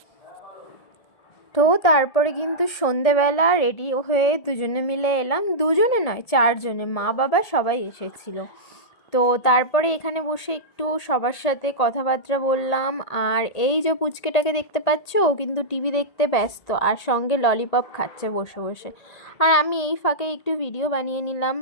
তো তারপরে কিন্তু সন্ধেবেলা রেডি হয়ে দুজনে মিলে এলাম, দুজনে নয় চারজনে, মা বাবা সবাই এসেছিল। তো তারপরে এখানে বসে একটু সবার সাথে কথাবার্তা বললাম। আর এই যে পুচকেটাকে দেখতে পাচ্ছ, ও কিন্তু টিভি দেখতে ব্যস্ত আর সঙ্গে ললিপপ খাচ্ছে বসে বসে। আর আমি এই ফাঁকে একটু ভিডিও বানিয়ে নিলাম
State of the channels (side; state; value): right; late; 1.8 ms